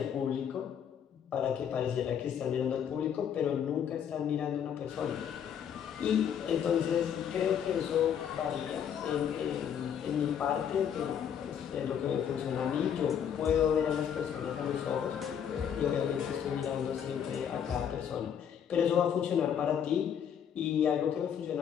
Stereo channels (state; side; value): quieter; right; 8.4 dB